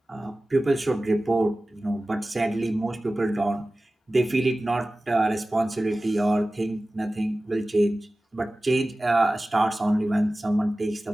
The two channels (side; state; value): both; normal; correlation 0.97